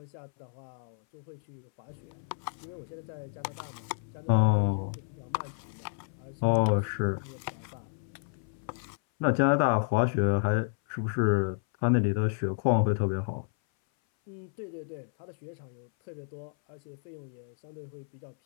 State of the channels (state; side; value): silent; right; 57 dB below the other